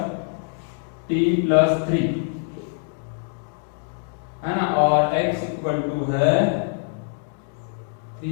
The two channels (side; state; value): right; silent; digital silence